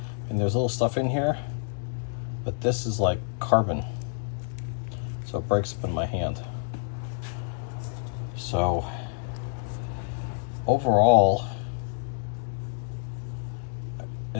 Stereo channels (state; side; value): silent; right; digital silence